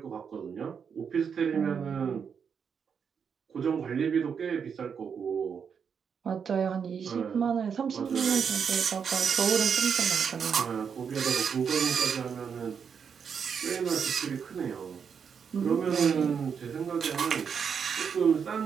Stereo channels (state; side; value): quieter; left; 6.8 dB